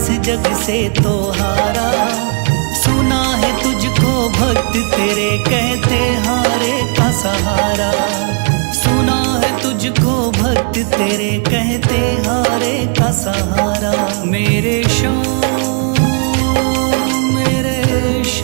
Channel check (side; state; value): left; quieter; 38.4 dB